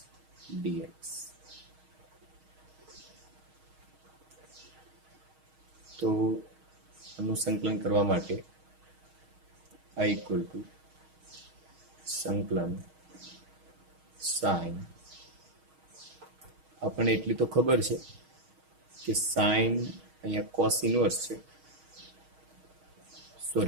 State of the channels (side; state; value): left; late; 6.4 ms